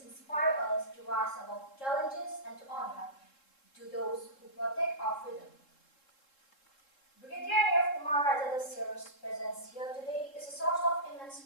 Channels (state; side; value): late; right; 3.7 ms